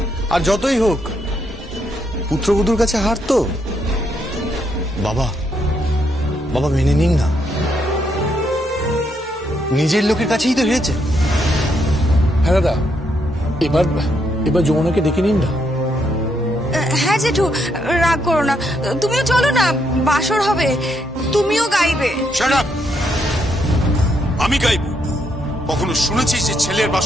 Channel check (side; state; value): both; normal; correlation 0.76